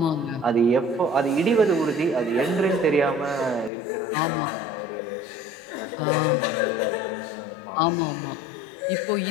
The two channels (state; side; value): drops out; right; at 3.7 s